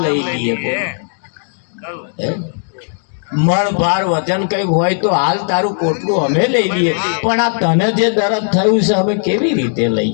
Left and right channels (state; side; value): silent; right; digital silence